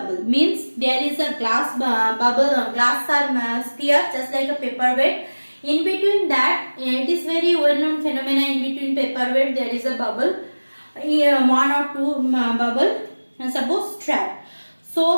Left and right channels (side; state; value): both; inverted; correlation -1.00